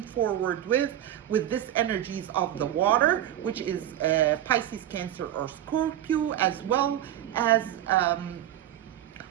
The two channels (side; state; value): left; quieter; 11.8 dB